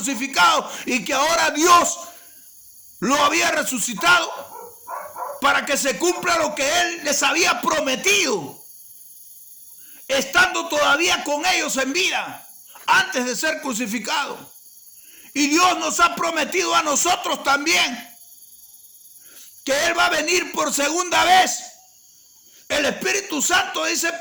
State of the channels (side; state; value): both; identical; correlation 1.00